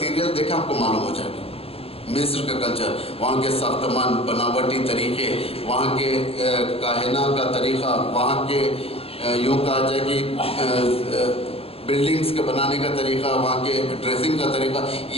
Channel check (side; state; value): right; late; 0.28 ms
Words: دیکھیں آپ کو معلوم ہو جائے گا. مصر کا کلچر، وہاں کے ساختمان، بناوٹی طریقے، وہاں کے کاہنہ کا طریقہ، وہاں کے یوں کہا جائے کہ بلڈنگز کے بنانے کا طریقہ، وہاں کے ڈریسنگ کا طریقہ،